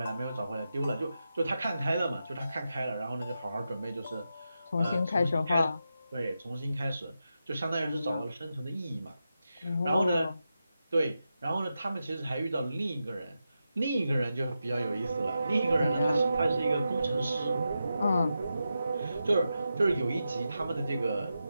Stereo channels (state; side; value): inverted; both; correlation -0.89